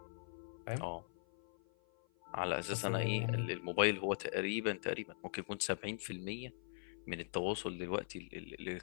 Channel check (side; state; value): right; silent; 50 dB below the other